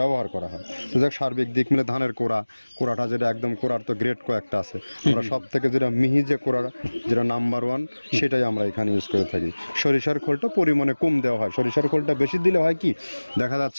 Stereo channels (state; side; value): inverted; both; correlation -1.00